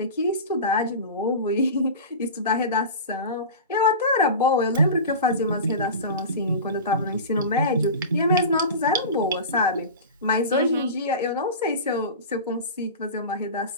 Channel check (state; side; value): inverted; both; correlation -0.30